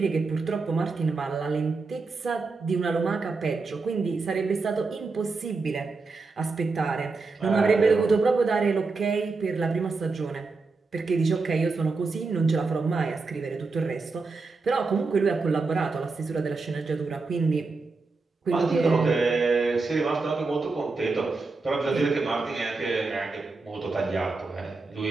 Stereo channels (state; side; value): quieter; left; 4.0 dB